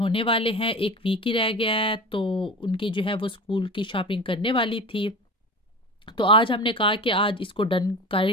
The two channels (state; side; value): normal; both; correlation 0.32